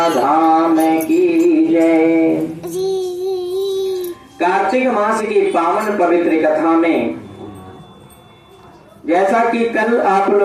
धाम की जय। कार्तिक मास की पावन पवित्र कथा में जैसा कि कल आप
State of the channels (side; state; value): both; identical; correlation 1.00